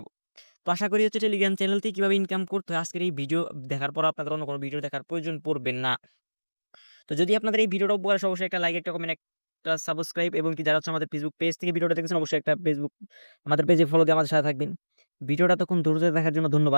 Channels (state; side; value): inverted; both; correlation -1.00